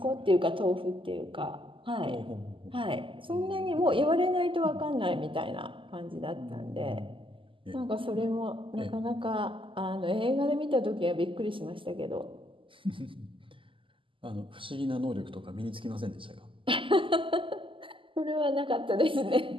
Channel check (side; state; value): left; late; 0.25 ms